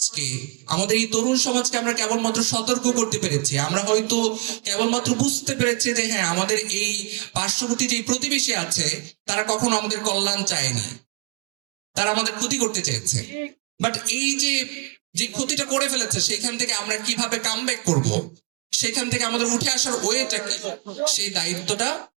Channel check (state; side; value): quieter; left; 31.8 dB